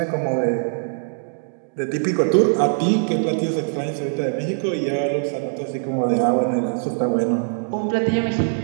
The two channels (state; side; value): silent; left; digital silence